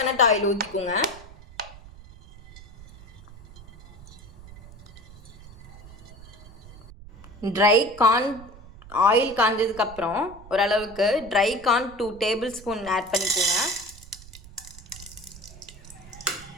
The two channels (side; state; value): right; noise; rumble, 18 dB below the sound